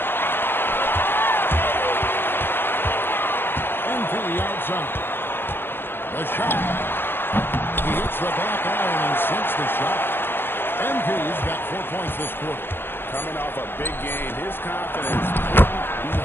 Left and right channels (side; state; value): right; late; 0.10 ms